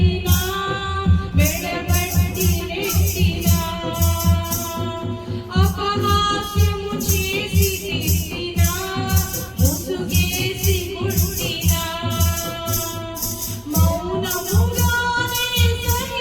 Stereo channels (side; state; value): both; identical; correlation 1.00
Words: మెడబట్టి నెట్టినా, అపహాస్యము చేసి తిట్టినా, ముసుగేసి కొట్టినా, మౌనముగానే